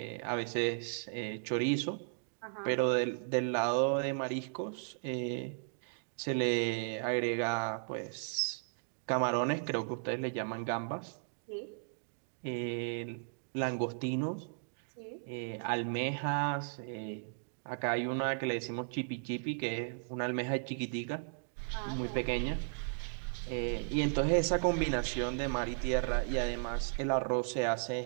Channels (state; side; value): silent; left; digital silence